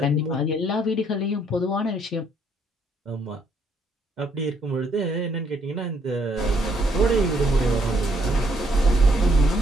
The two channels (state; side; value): normal; both; correlation 0.69